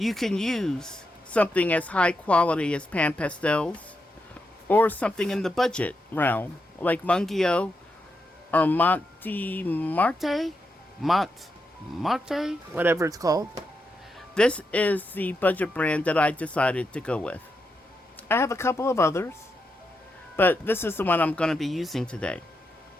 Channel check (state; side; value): normal; both; correlation 0.85